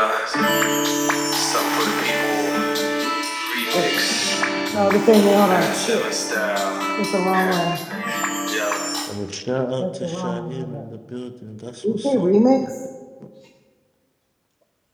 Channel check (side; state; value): both; identical; correlation 1.00